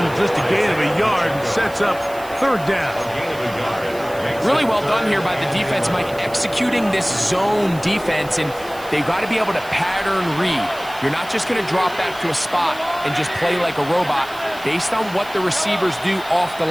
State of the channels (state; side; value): noise; right; hiss, 20 dB below the sound